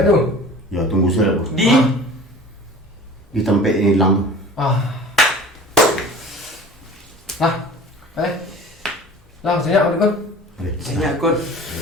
tu? Ya tunggu saya kau. Di tempat ini hilang. Lah, senyap aku kan? Senyap kot.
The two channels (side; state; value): both; normal; correlation 0.42